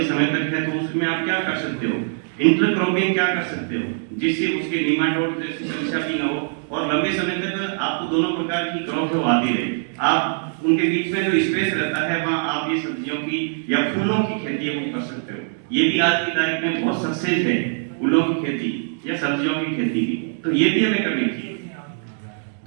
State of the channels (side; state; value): left; silent; digital silence